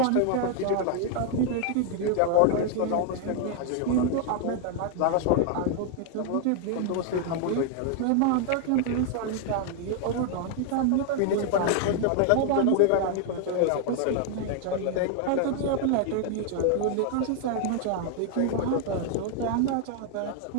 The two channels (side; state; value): both; different; correlation 0.00